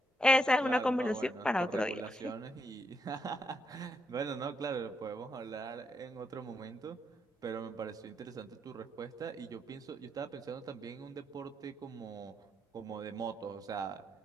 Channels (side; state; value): both; normal; correlation 0.79